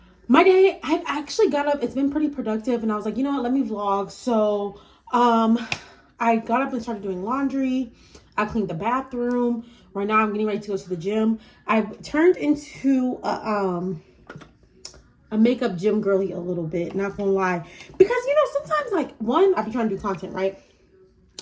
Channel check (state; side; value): identical; both; correlation 1.00